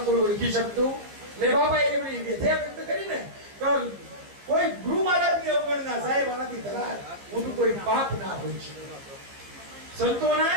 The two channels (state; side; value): late; left; 15 ms